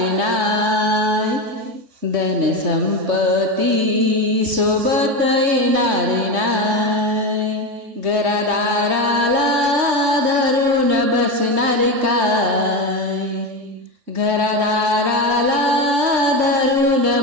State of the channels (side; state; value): left; late; 3.5 ms